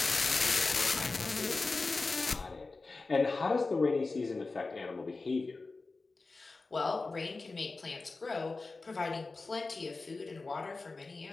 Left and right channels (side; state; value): right; quieter; 3.7 dB